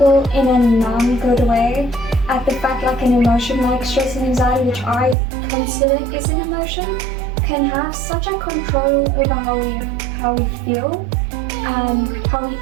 in a non-good way at the fact an emotion like stress and anxiety, which I consider is an emotion, can have such a control over how we feel and how we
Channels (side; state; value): left; drops out; at 5.2 s